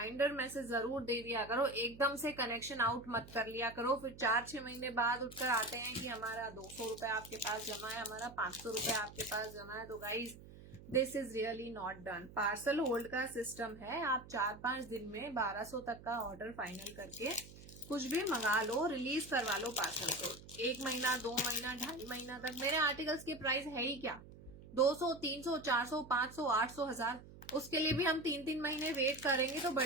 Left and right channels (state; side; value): noise; right; hum, 17 dB below the sound